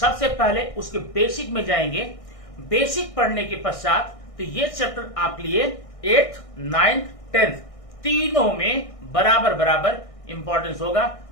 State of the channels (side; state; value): right; late; 1.6 ms